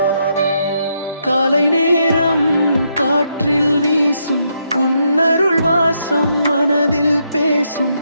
காலை நேரம் காற்றில் வீசும் உன்னருள் வாசம் மனதில் பேசும்.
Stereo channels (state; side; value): inverted; both; correlation -0.78